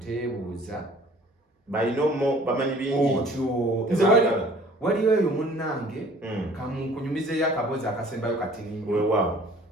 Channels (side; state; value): both; normal; correlation 0.52